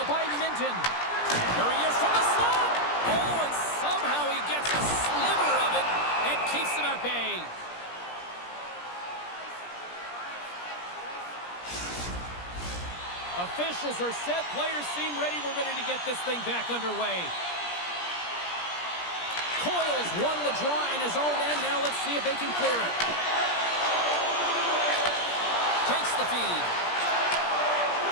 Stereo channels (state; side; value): late; right; 17 ms